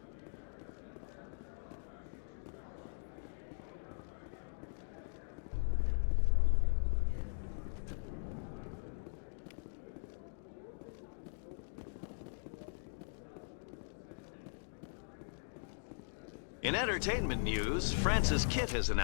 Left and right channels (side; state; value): right; silent; digital silence